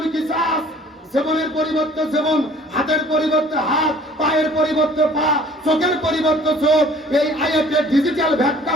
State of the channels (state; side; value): normal; both; correlation 0.52